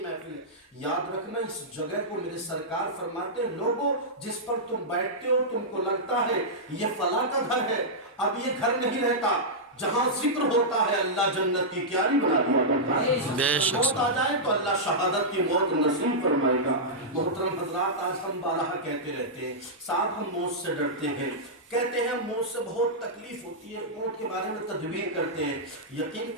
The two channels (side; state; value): both; normal; correlation -0.10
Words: محفل ہے، یاد رکھنا اس جگہ کو میرے سرکار فرماتے ہیں، لوگوں جس پر تم بیٹھتے ہو تم کو لگتا ہے یہ فلاں کا گھر ہے، اب یہ گھر نہیں رہتا، جہاں ذکر ہوتا ہے اللہ جنت کی کیاری بنا دیا کرتا ہے۔ بے شک موت آ جائے تو اللہ شہادت کی موت نصیب فرمائے گا۔ محترم حضرات، آج ہم بارہا کہتے رہتے ہیں، صاحب ہم موت سے ڈرتے ہیں، کہتے ہیں موت سے بہت تکلیف ہوتی ہے، موت کے بارے میں تدبیر کرتے ہیں۔ یقین